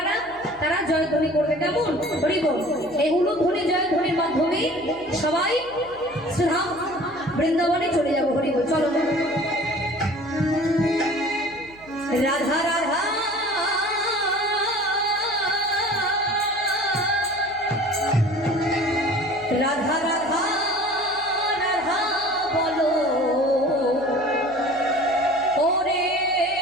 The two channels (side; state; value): right; noise; hum, 24 dB below the sound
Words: তারা জয়ধ্বনি করবে। কেমন? হরি বল। এই উলুধ্বনি জয়ধ্বনির মাধ্যমে সবাই শ্রীধাম বৃন্দাবনে চলে যাবো। হরি বল, চলো। রাধা রাধা রাধা রাধা রাধা বলো ওরে